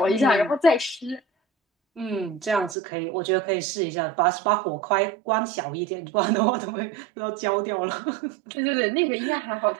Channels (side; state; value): left; drops out; at 2.8 s